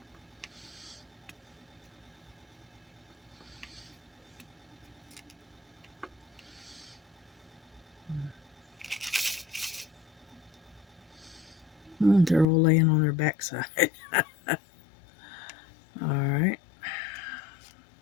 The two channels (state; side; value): drops out; right; at 12.5 s